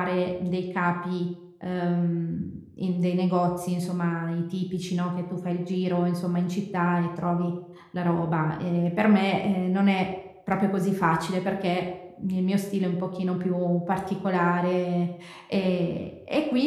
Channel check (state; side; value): identical; both; correlation 1.00